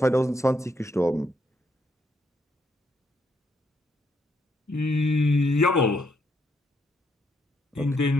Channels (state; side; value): normal; both; correlation 0.76